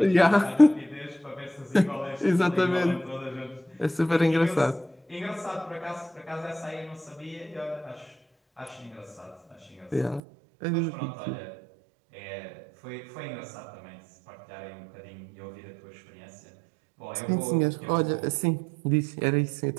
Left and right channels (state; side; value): drops out; left; at 10.2 s